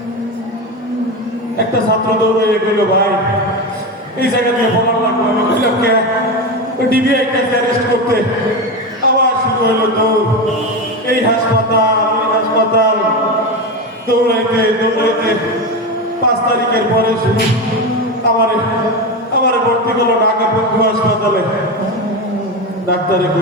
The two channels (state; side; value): normal; both; correlation 0.18